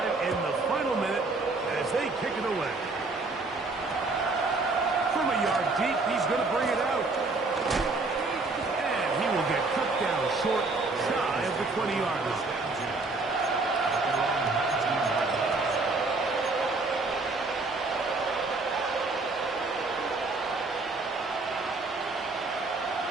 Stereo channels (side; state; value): left; quieter; 3.5 dB